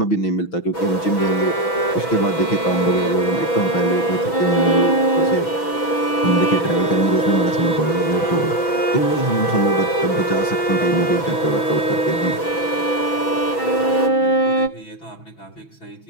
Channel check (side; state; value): right; late; 6.1 ms